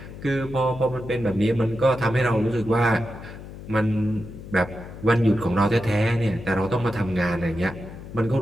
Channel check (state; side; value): noise; left; hum, 13 dB below the sound